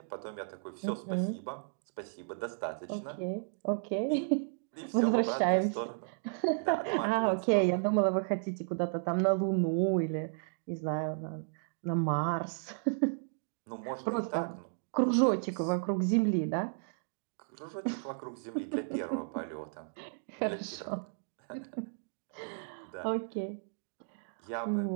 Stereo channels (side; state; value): left; silent; digital silence